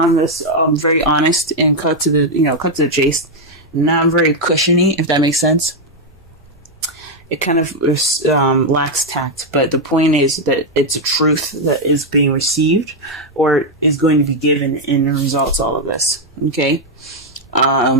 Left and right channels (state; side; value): normal; both; correlation 0.01